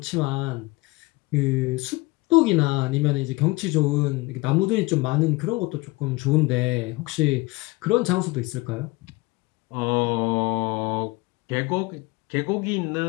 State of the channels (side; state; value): right; quieter; 22.8 dB